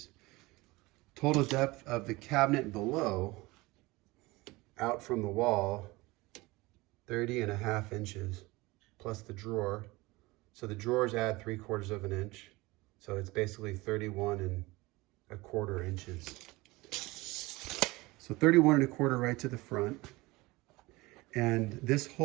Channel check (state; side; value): quieter; left; 21.7 dB